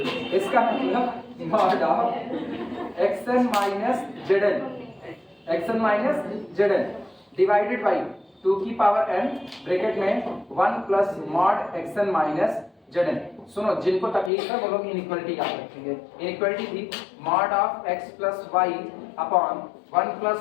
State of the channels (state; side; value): drops out; right; at 14.3 s